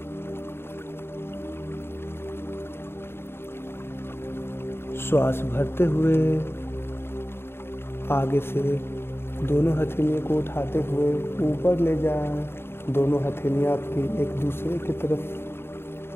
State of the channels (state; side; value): late; right; 0.11 ms